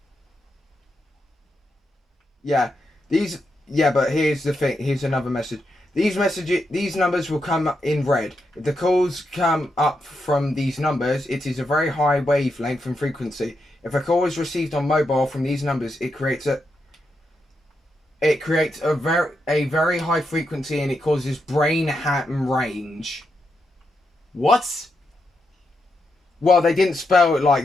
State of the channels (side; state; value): both; normal; correlation 0.84